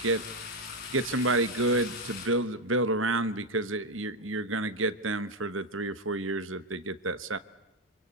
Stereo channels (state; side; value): normal; both; correlation 0.06